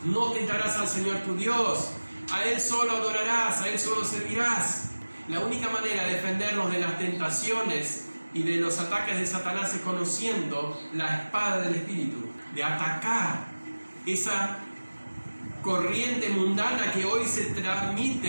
no tentarás al Señor tu Dios, a Él solo adorarás, a Él solo servirás. La única manera de defendernos de las tentaciones y de los ataques de Satanás es conociendo la espada del Espíritu, de atacar esa corriente mundana que hoy se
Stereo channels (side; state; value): both; inverted; correlation -1.00